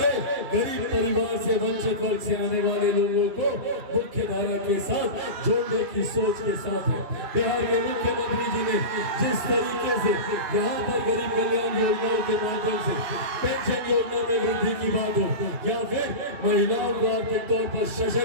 गरीब परिवार से वंचित वर्ग से आने वाले लोगों को मुख्य धारा के साथ जोड़ने की सोच के साथ है। बिहार के मुख्यमंत्री जी ने जिस तरीके से यहाँ पर गरीब कल्याण योजनाओं के माध्यम से पेंशन योजना में वृद्धि की बात हो या फिर महिलाओं को आर्थिक तौर पर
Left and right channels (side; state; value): left; late; 2.8 ms